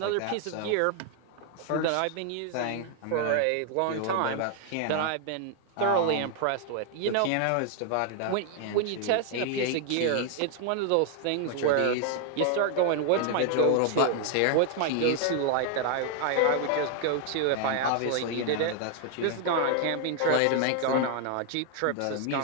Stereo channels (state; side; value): different; both; correlation 0.00